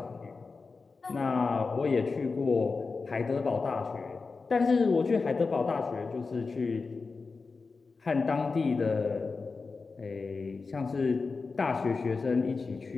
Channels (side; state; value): right; quieter; 4.4 dB